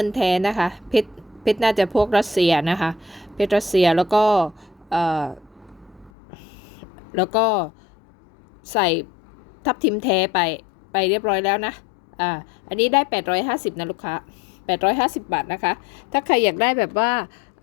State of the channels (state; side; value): drops out; right; at 6.1 s